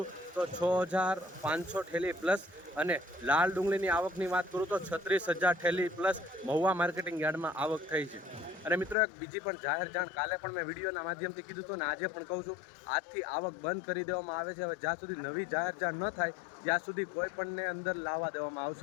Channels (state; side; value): drops out; right; at 9.0 s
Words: તો 6,500 ઠેલી પ્લસ, અને લાલ ડુંગળીની આવકની વાત કરું તો 36,000 ઠેલી પ્લસ મહુવા માર્કેટિંગ યાર્ડમાં આવક થઈ છે. અને મિત્રો, એક બીજી પણ જાહેર જાણ કાલે પણ મેં વિડીયોના માધ્યમથી કીધું હતું, ને આજે પણ કહું છું, આજથી આવક બંધ કરી દેવામાં આવે છે. હવે જ્યાં સુધી નવી જાહેર જાણ ન થાય ત્યાં સુધી કોઈ પણને અંદર લાવવા દેવામાં